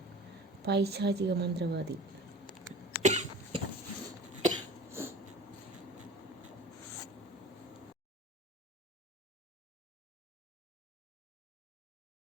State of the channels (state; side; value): normal; both; correlation 0.41